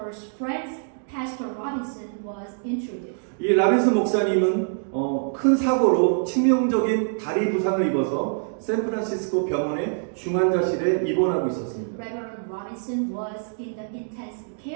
friend Pastor Robinson was introduced. 이 라빈슨 목사님은 큰 사고로 치명적인 다리 부상을 입어서 샌프란시스코 병원의 중환자실에 입원하고 있었습니다. Reverend Robinson was in the intensive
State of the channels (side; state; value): left; silent; digital silence